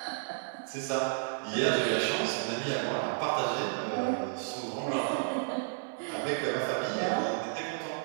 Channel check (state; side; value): silent; left; 56 dB below the other